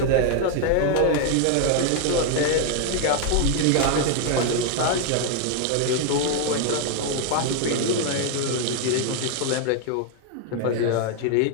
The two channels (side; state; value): both; different; correlation 0.00